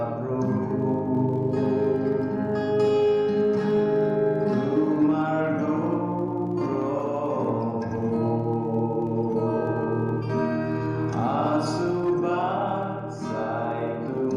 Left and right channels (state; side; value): identical; both; correlation 1.00